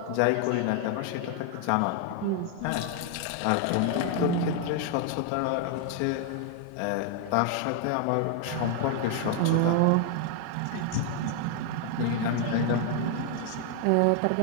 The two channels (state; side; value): different; both; correlation 0.00